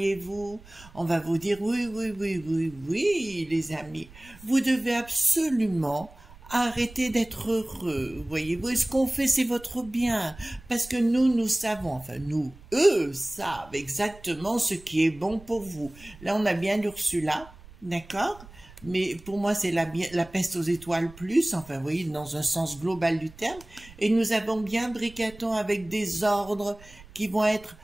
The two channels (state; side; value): noise; right; rumble, 21 dB below the sound